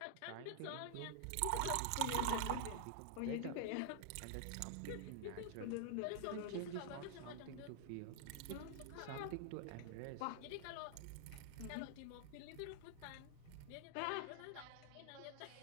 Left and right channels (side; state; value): both; different; correlation 0.00